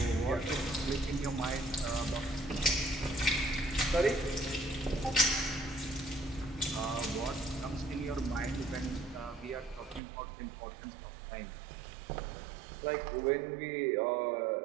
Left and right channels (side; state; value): left; drops out; at 10.0 s